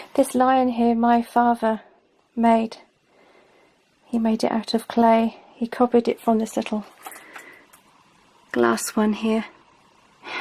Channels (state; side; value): identical; both; correlation 1.00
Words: This lion here my father made. He made it out of clay. He copied it from this little glass one here.